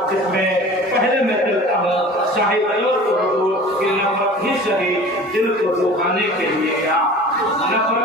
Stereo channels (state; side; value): normal; both; correlation 0.41